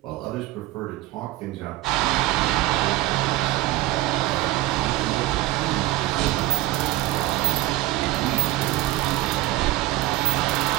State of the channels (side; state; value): left; quieter; 17.1 dB